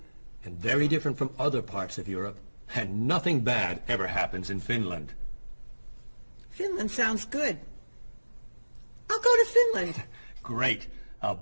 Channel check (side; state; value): both; inverted; correlation -1.00